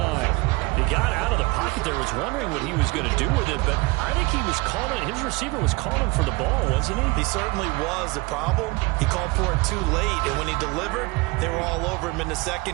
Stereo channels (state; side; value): quieter; left; 24.4 dB